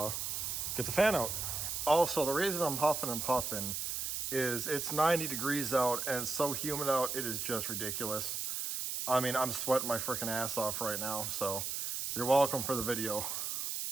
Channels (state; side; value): noise; right; hiss, 2 dB below the sound